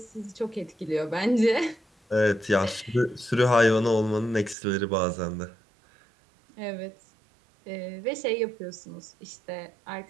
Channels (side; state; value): left; drops out; at 4.5 s